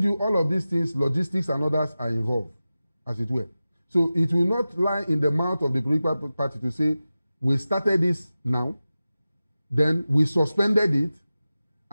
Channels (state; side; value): inverted; both; correlation -0.95